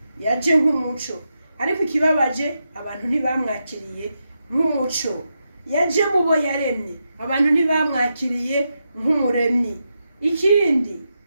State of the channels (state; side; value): inverted; both; correlation -0.86